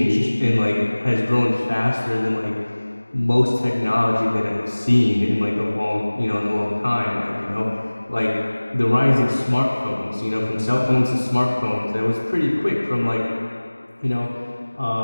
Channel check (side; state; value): both; inverted; correlation -1.00